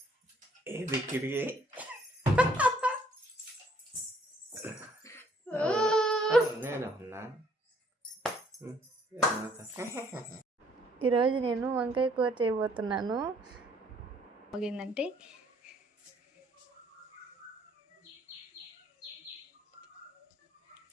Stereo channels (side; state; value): both; normal; correlation 0.63